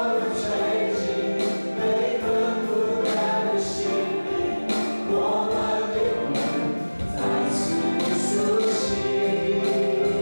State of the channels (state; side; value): inverted; both; correlation -1.00